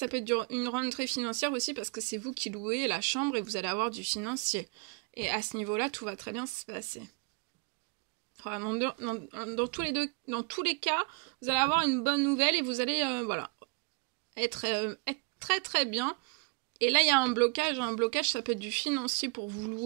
peut être une rentrée financière aussi parce que c'est vous qui louez la chambre et vous allez avoir du financier. Et à ce niveau-là, tout va très bien se passer. Enfin, dans tous les cas, vous allez avoir une bonne nouvelle et vous allez voilà, être très bien. Et là il y a un blocage, ça peut être du financier pour vous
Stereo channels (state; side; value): quieter; left; 34.0 dB